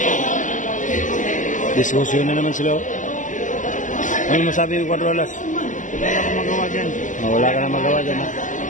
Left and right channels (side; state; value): right; late; 0.37 ms